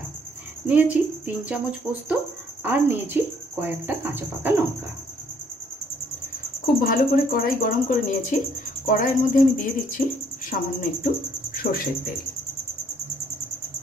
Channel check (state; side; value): normal; both; correlation 0.65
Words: निয়েছি 3 चामच पोस्त और निয়েছি कयेकटा काँचा पाका लंका। खूब भालो करे कड़ाई गरम करे निয়েছি। कड़ाइर मध्य आमी दिए दिচ্ছি सामान्य एकटू सर्षेर तेल।